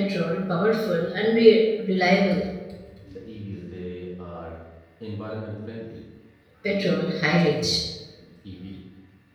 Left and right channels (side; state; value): both; identical; correlation 1.00